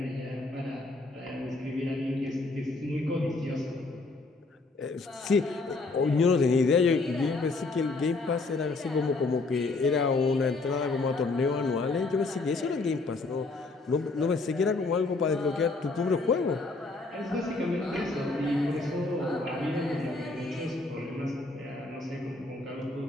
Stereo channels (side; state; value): right; quieter; 3.5 dB